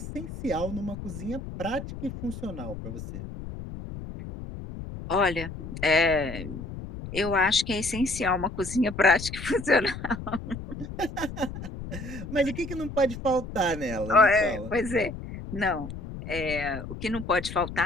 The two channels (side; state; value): left; noise; rumble, 9 dB below the sound